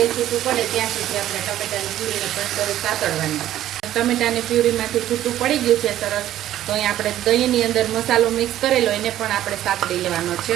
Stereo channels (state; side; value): quieter; left; 12.8 dB